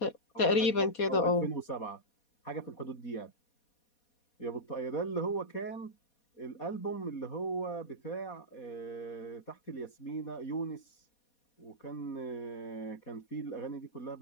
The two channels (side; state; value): right; late; 4.2 ms